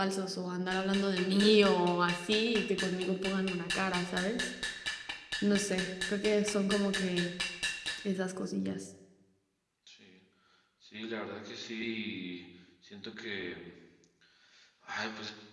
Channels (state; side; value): identical; both; correlation 1.00